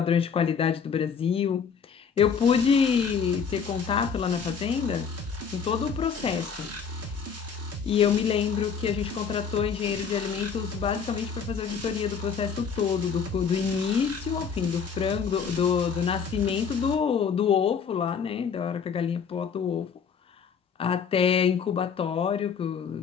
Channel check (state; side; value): quieter; right; 6.5 dB